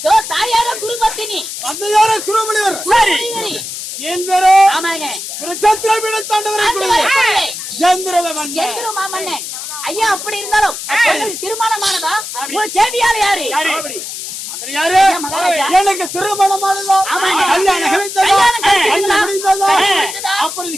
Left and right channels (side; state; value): left; noise; hiss, 8 dB below the sound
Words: தாயார குருபத்தினி, தந்தையார குருமணிவர். சரி. என் பேரோ ஆமாங்க. குருச்சத்திரபீட தாண்டவரை குருவே எந்திர மாமன்னன். ஐயா அப்படி இருந்தாலும் உங்களுக்கு திருமணமானதா? உங்க சேவியார் யாரு? யாரு? எனக்கு திருமணமானதா? ஆமாங்க. கல்யாணம் கழித்ததா? கல்யாணம் கழித்ததா? கல்யாணம் முடிந்ததா? முடிந்ததா? அப்படி